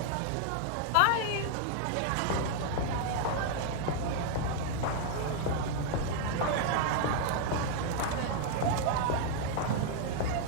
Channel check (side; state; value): both; different; correlation 0.00